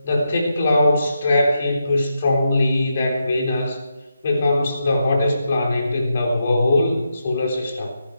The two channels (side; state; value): both; inverted; correlation -0.84